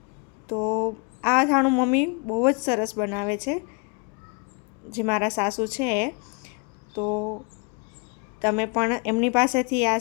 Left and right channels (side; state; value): right; quieter; 31.9 dB